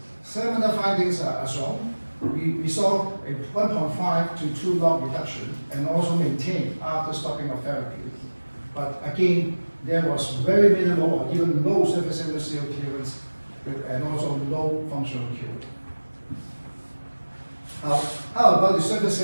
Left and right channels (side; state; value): both; inverted; correlation -1.00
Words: Similar findings are shown. We saw a 1.5 to 2 log reduction and also maintained after stopping of therapy. But again, there was very minimal or even low surface antigen cell clearance and also low functional cure. How about the surface